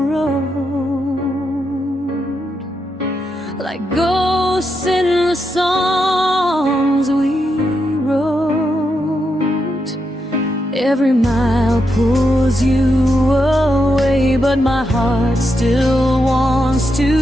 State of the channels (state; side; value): normal; both; correlation 0.84